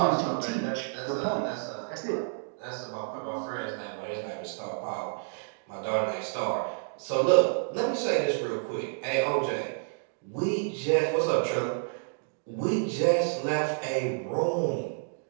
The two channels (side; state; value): left; silent; digital silence